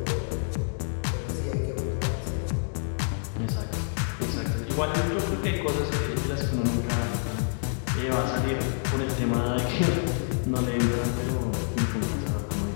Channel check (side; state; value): right; silent; digital silence